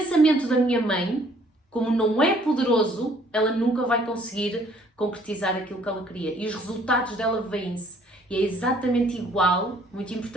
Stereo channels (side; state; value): both; normal; correlation 0.60